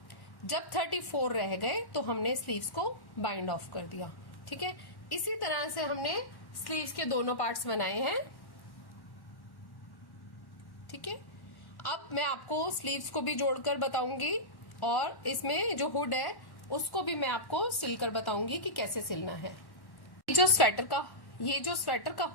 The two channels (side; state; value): right; late; 1.1 ms